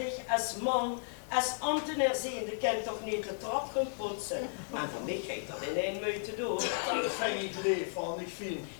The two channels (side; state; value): right; silent; digital silence